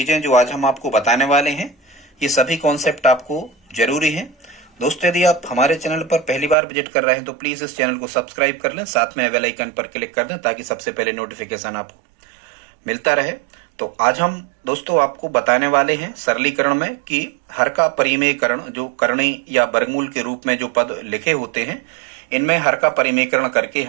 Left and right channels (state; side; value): drops out; left; at 6.6 s